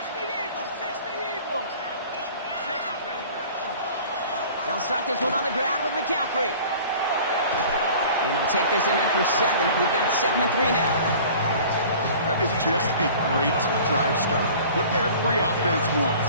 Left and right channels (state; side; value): inverted; both; correlation -0.45